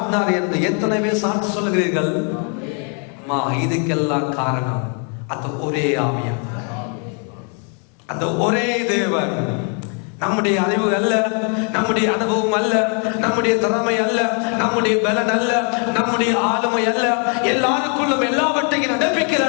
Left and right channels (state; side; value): quieter; right; 39.6 dB